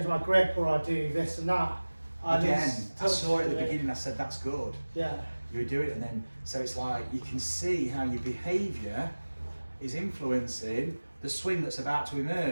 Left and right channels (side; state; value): both; inverted; correlation -1.00